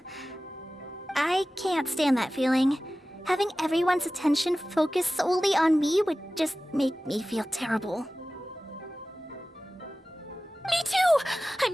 I can't stand that feeling. Having everyone's attention focused solely on me would just make me feel terrible. Me too!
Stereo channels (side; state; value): both; normal; correlation 0.96